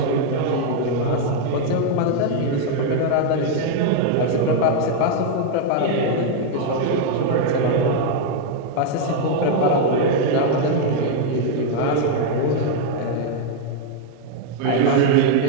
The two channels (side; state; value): both; different; correlation 0.00